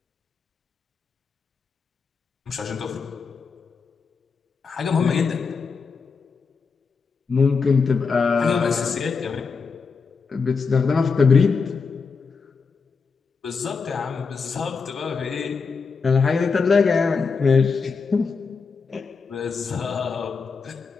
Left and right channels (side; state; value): right; quieter; 5.1 dB